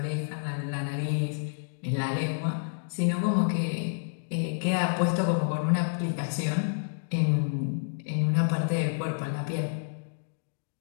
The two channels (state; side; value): silent; right; digital silence